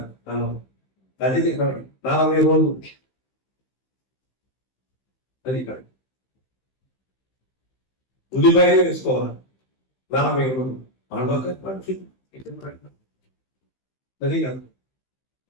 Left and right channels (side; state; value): right; late; 15 ms